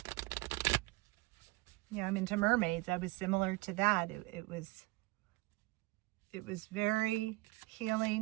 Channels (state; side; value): quieter; left; 21.2 dB